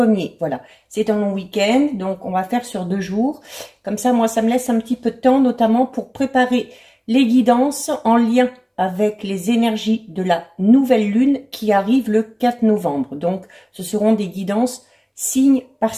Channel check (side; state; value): both; identical; correlation 1.00